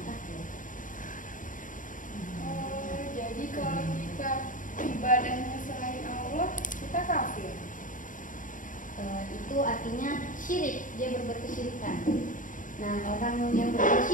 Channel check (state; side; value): late; right; 0.38 ms